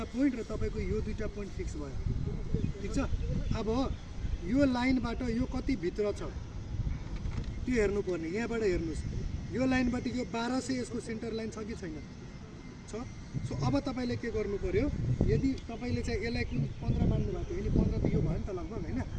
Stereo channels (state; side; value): identical; both; correlation 1.00